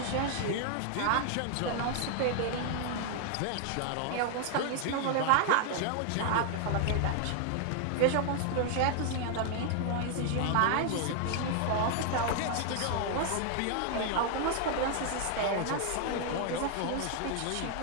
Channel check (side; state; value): both; different; correlation 0.00